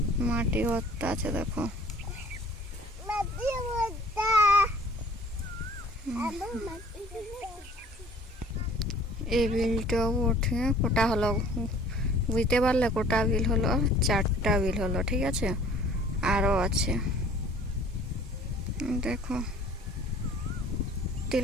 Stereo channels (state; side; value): normal; both; correlation 0.51